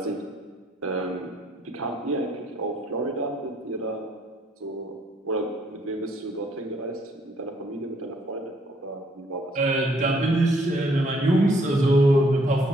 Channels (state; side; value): normal; both; correlation 0.66